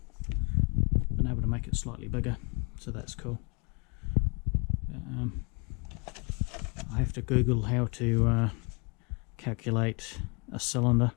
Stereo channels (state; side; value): quieter; right; 31.4 dB